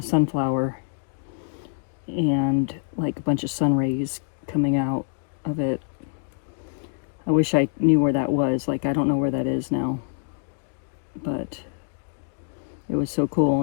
sunflower and like a bunch of sun rays coming out of it. I wish I knew where that was. Like, I don't know where that is now, but it was so cool,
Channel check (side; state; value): right; silent; 61 dB below the other